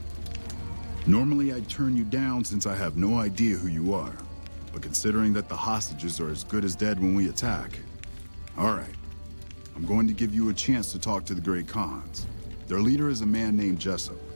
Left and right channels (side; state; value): both; inverted; correlation -1.00